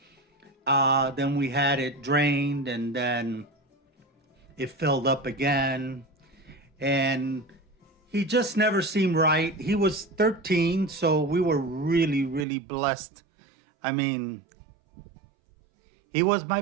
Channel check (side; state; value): left; drops out; at 12.5 s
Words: Then we had it drained, and then it filled up again. And he just never seemed right. He was 13, so we were really, really blessed. I mean, he was my